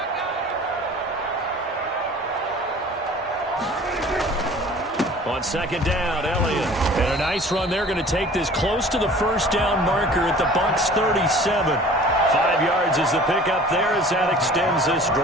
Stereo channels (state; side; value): normal; both; correlation 0.46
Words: On 2nd down, Elliott. And a nice run. They're going to take this close to the 1st down marker at the Bucs 37. 5 yards is the pickup there as that extends this